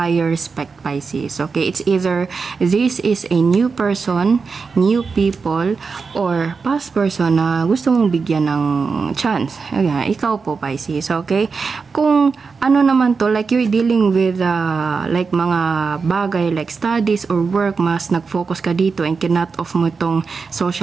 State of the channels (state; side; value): quieter; left; 4.9 dB